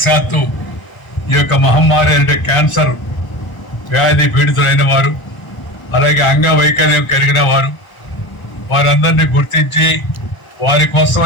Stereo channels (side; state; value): right; late; 1.0 ms